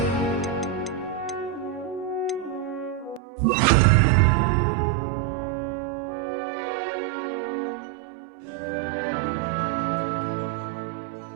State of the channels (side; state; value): left; drops out; at 3.2 s